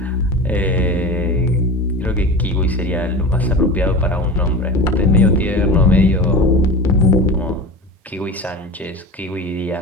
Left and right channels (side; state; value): both; normal; correlation 0.30